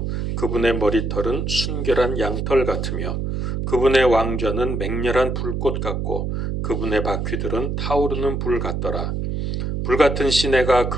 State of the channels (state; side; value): noise; right; hum, 2 dB below the sound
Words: 그분의 머리털은 순결한 양털 같으며 그분의 왕좌는 맹렬한 불꽃 같고 그분의 바퀴들은 타오르는 불 같더라. 불같은 시내가